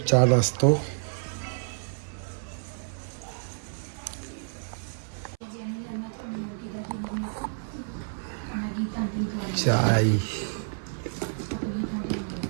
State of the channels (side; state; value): left; silent; 58 dB below the other